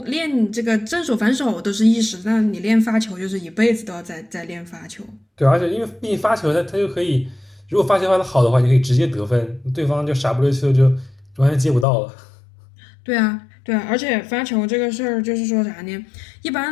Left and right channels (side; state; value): right; drops out; at 11.9 s